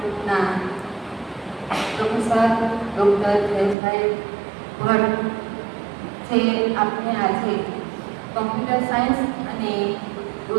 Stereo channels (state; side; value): drops out; left; at 3.8 s